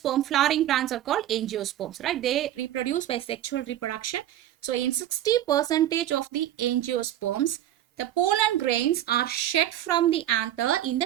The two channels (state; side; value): quieter; left; 12.5 dB